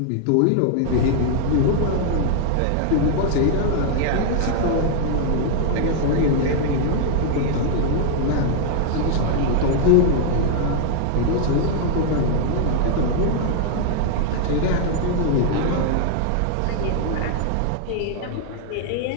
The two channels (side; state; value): both; different; correlation 0.00